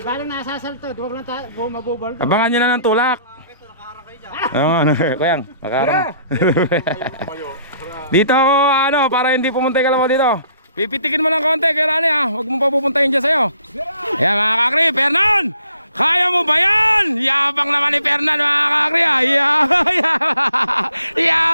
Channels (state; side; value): inverted; both; correlation -0.63